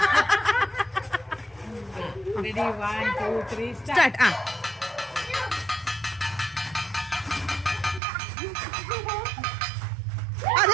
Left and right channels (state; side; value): drops out; left; at 8.0 s